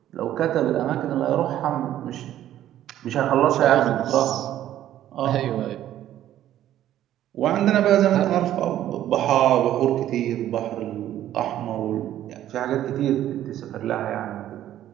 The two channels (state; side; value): quieter; left; 12.3 dB